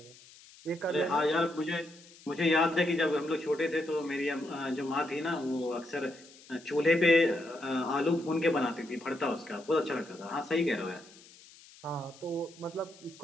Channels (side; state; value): left; noise; hiss, 22 dB below the sound